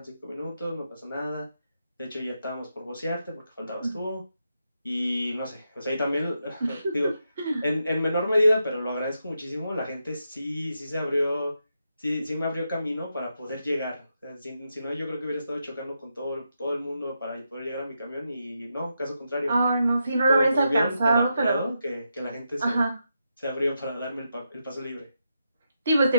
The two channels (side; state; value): both; inverted; correlation -0.84